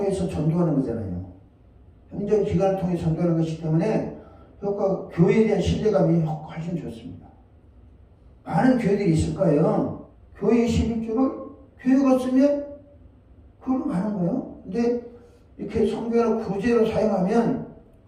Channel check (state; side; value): identical; both; correlation 1.00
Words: 전도하는 거잖아요. 행정기관을 통해서 전도하는 것이기 때문에 교회에 대한 신뢰감이 훨씬 좋습니다. 많은 교회들이 있을 거예요. 교회의 11조를 교회가 쓰면 그걸로 가는 거예요. 근데 이렇게 성교나 구제로 사용하면